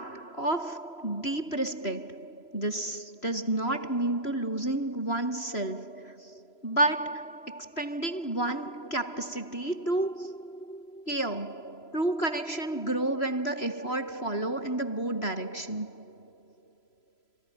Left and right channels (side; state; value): right; late; 3.0 ms